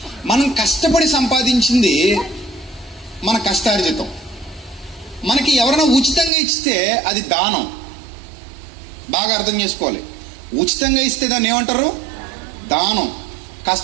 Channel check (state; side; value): drops out; left; at 6.3 s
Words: మనం కష్టపడి సంపాదించింది మన కష్టార్జితం. మనకి ఎవరైనా ఉచితంగా ఇస్తే అది దానం. బాగా అర్థం చేసుకోవాలి. ఉచితంగా ఇస్తే దాన్ని ఏమంటారు? దానం.